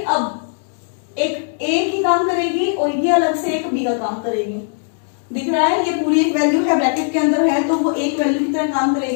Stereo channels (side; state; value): right; silent; digital silence